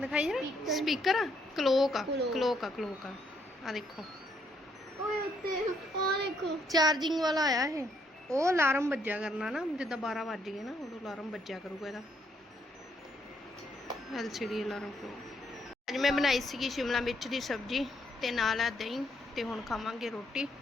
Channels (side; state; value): both; normal; correlation 0.72